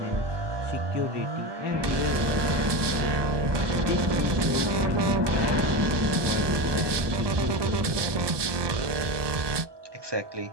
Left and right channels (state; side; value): late; left; 1.2 ms